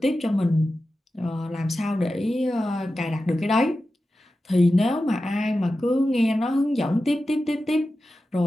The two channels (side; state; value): both; normal; correlation 0.93